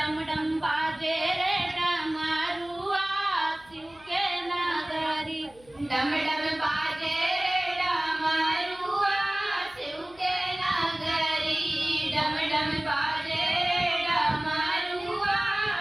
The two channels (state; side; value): noise; left; hum, 27 dB below the sound